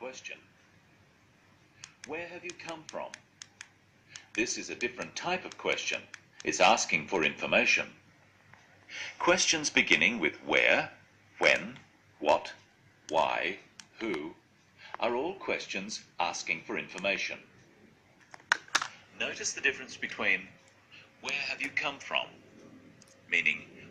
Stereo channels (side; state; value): both; identical; correlation 1.00